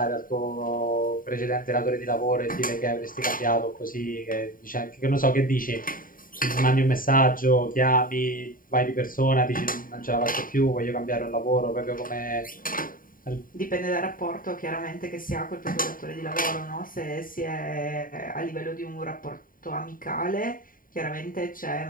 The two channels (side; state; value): right; late; 0.41 ms